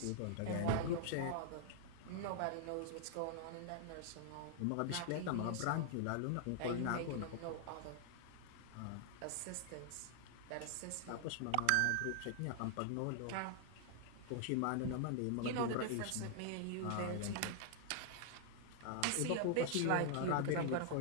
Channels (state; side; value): different; both; correlation -0.01